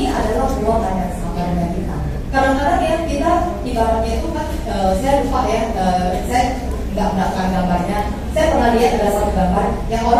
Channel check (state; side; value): identical; both; correlation 1.00